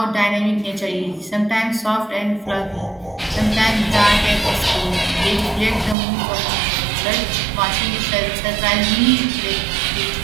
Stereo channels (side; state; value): left; drops out; at 6.0 s